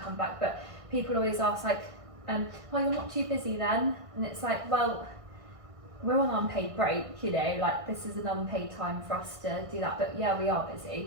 back. But people always ask well, you're not too busy then? And it's like, well, we're on unpaid break, this is an unpaid time for us to do that, but yeah, we are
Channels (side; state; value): left; late; 1.5 ms